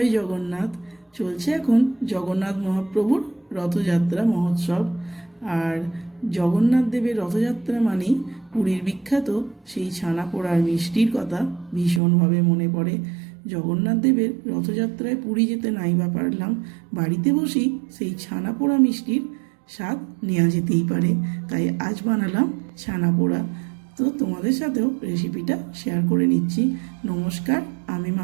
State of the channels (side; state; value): left; drops out; at 12.0 s